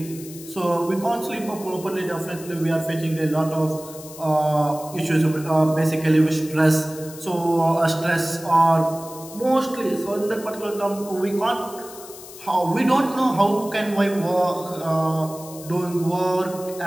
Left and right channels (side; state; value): left; noise; hiss, 16 dB below the sound